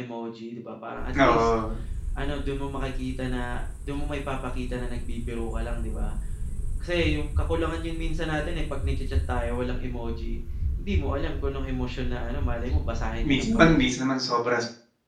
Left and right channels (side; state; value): both; identical; correlation 1.00